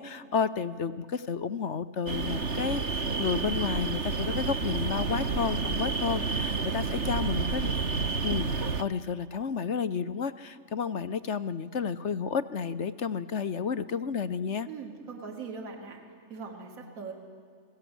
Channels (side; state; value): right; late; 3.3 ms